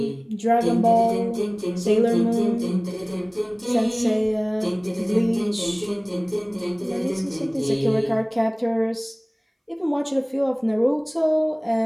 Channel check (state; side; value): identical; both; correlation 1.00